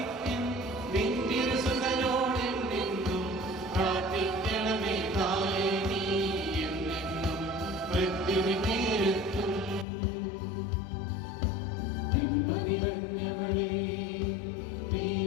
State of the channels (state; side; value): drops out; right; at 9.9 s